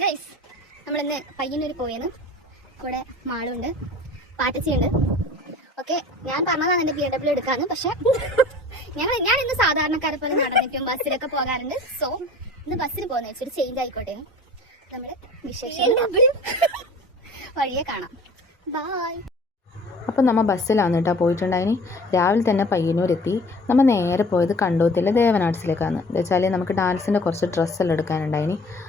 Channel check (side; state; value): both; normal; correlation 0.44